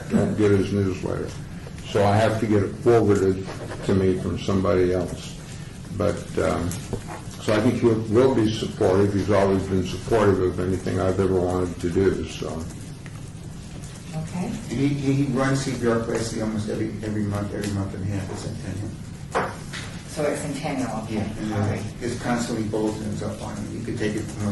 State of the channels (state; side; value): identical; both; correlation 1.00